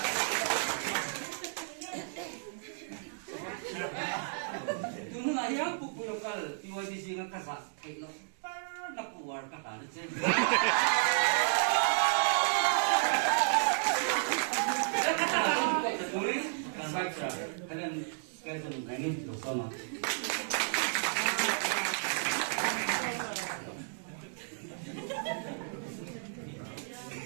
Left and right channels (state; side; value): silent; left; digital silence